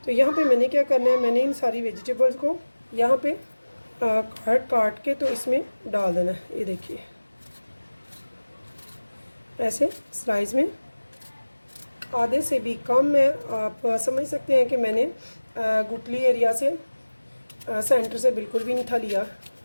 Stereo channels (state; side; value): inverted; both; correlation -1.00